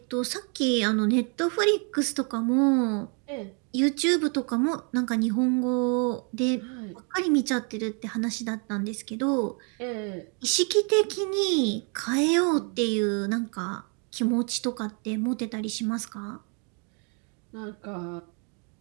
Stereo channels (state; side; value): quieter; left; 37.6 dB